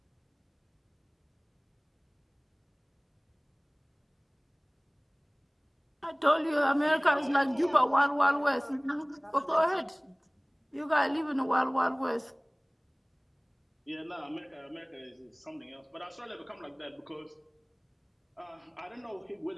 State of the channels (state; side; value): identical; both; correlation 1.00